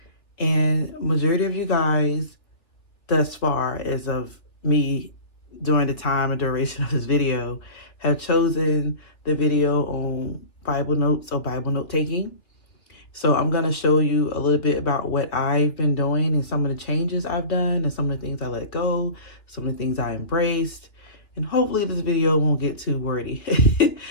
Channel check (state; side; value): late; right; 3.1 ms